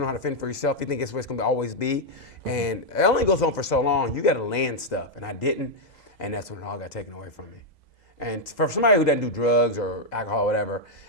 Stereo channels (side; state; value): right; late; 2.0 ms